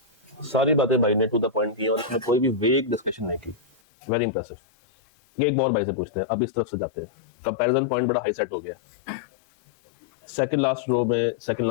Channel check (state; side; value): drops out; right; at 3.8 s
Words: सारी बातें भाई ने टू द पॉइंट की और इसमें कोई भी वेग डिस्कशन नहीं की। Very impressive. ये एक और भाई से पूछते हैं, अब इस तरफ से जाते हैं। कंपैरिजन पॉइंट बड़ा हाई सेट हो गया। सेकंड लास्ट रो में सेकंड